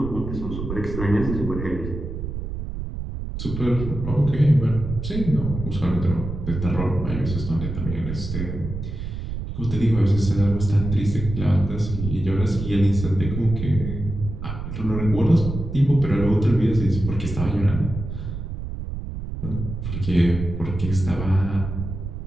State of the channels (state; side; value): noise; right; rumble, 6 dB below the sound